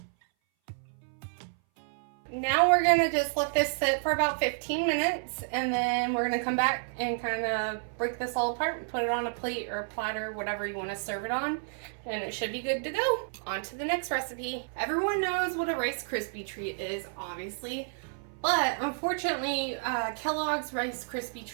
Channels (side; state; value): left; silent; 58 dB below the other